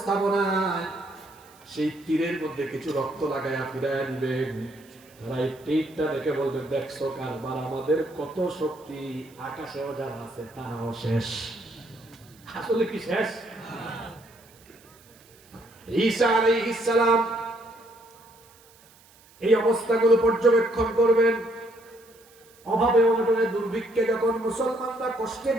সেই তীরের মধ্যে কিছু রক্ত লাগাইয়া ফিরাইয়া দিবেন। তারা এই তীরটা দেখে বলবেন, দেখছো কারবার, আমাদের কত শক্তি, আকাশেও যারা আছে তারাও শেষ। আসলে কি শেষ? ঈসা আলাইহিস সালাম এই অবস্থাগুলো পর্যবেক্ষণ করবেন। অভাবে অনটনে দুর্ভিক্ষে যখন মুসলমানরা কষ্টে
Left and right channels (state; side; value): noise; right; hiss, 27 dB below the sound